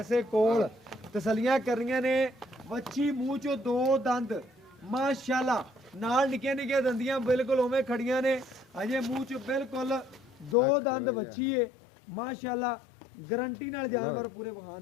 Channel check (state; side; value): drops out; right; at 10.6 s